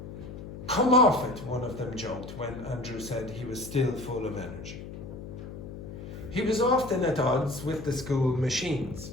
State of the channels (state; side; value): noise; left; hum, 11 dB below the sound